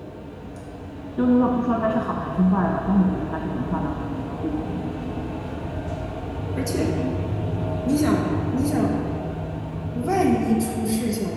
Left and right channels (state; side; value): identical; both; correlation 1.00